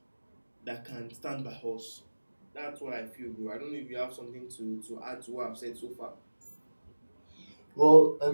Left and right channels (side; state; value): both; inverted; correlation -1.00